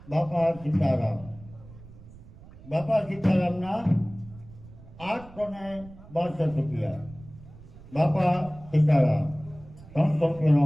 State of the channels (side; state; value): right; noise; rumble, 19 dB below the sound